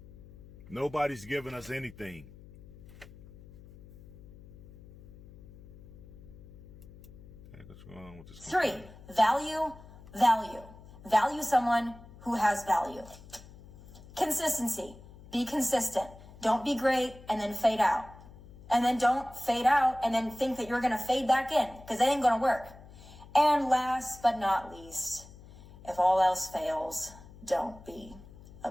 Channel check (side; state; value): left; noise; hum, 19 dB below the sound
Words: Nobody's giving us anything. What's going on with this? 3, value. Value someone who has value. Consistency. Be consistent. Don't be great and then fade out. And then don't fade out and then think that you're going to fade back in, because that ain't going to work. And last but not least, if all else fails, don't be a